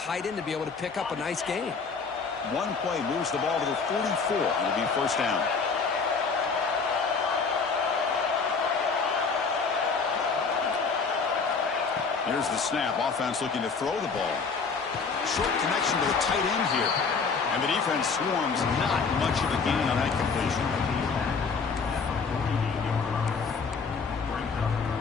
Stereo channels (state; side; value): quieter; right; 5.0 dB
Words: end to be able to pick up a nice gain. One play moves the ball to the 44, and it'll be first down. Here's the snap. Offense looking to throw the ball. Short connection to the tight end here. And the defense swarms. Not much of a gain on that completion.